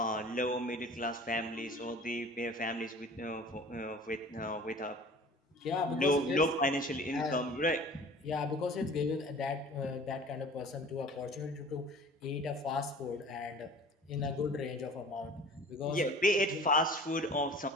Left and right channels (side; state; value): both; normal; correlation 0.44